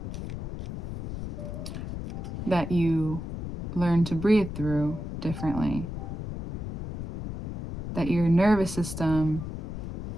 that you learn to breathe through differently? That your nervous system,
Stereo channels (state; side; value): noise; left; rumble, 7 dB below the sound